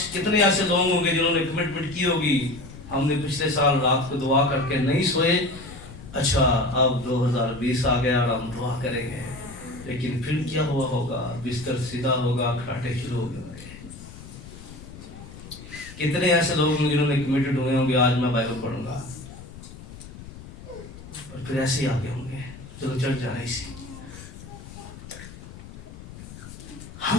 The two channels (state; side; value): noise; left; rumble, 15 dB below the sound